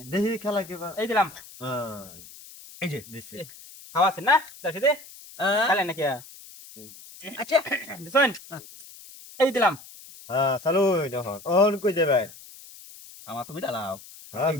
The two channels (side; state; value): left; noise; hiss, 18 dB below the sound